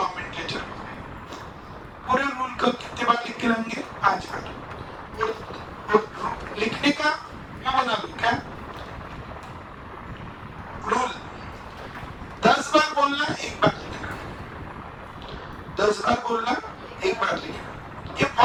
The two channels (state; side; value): identical; both; correlation 1.00